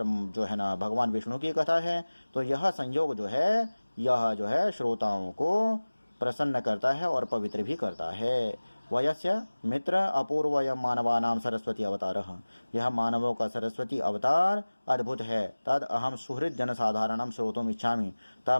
जो है ना भगवान विष्णु की कथा है। तो यह संयोग जो है यह जो है श्रोताओं को प्रसन्न करता है और पवित्र भी करता है। वयस्य मित्र अपूर्वय मानवानाम सरस्वती अवतारः, यह मानवों का सरस्वती अवतार अद्भुत है। तद अहम सुहृद जनसाधारणम श्रोतुम इच्छामि,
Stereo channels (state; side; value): inverted; both; correlation -1.00